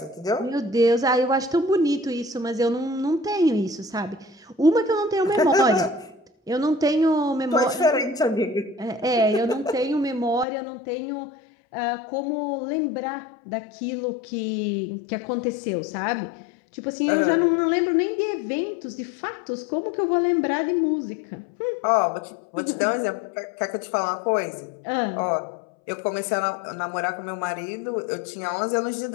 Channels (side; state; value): right; drops out; at 10.5 s